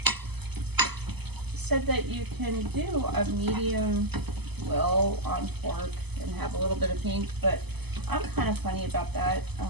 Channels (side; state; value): left; late; 0.98 ms